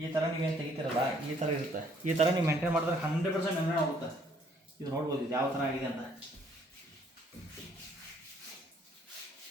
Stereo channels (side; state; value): both; normal; correlation 0.64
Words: ಈ ಥರ ನೀವೇನು ತೆಗಿತೀರಲ್ಲ, ಈ ಥರ ಇರುತ್ತೆ. ಈ ಥರ ನೀವು ಮೇಂಟೈನ್ ಮಾಡಿದ್ರೆ 100% ಮೇಂಟೈನ್ ಆಗುತ್ತೆ. ಇದು ನೋಡ್ಬೋದು ಇದು ಯಾವ ಥರ ಆಗಿದೆ ಅಂತ.